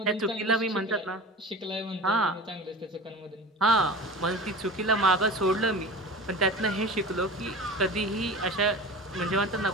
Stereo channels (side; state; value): both; normal; correlation 0.34